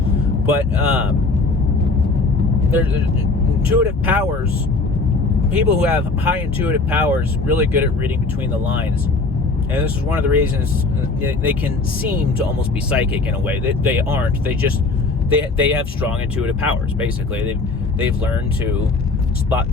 there's intuitive powers. People who have high intuitive powers really good at reading between the lines, and this is one of the reasons they can seem to almost be psychic in a way. They aren't. They have strong intuitive powers. Basically, they've learned to spot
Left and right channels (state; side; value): quieter; right; 3.6 dB